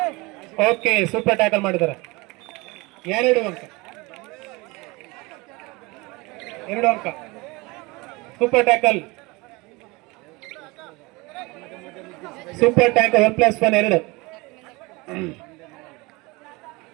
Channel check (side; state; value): left; quieter; 24.5 dB